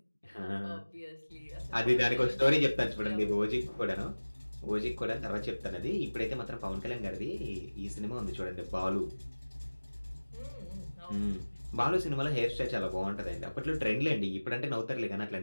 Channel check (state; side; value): inverted; both; correlation -1.00